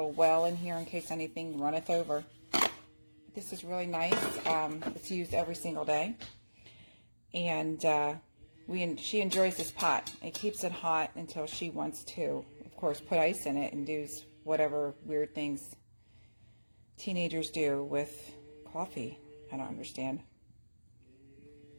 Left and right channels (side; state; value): both; inverted; correlation -1.00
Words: well in here in case anything runneth over. This is really nice. It's used every single day, and she enjoys this pot. It keeps it hot until she wants to, of course, put ice in it and do whatever weird things teenagers do with coffee. I don't understand.